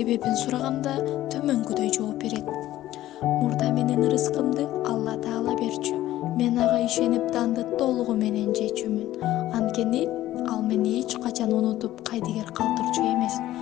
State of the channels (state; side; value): quieter; right; 14.5 dB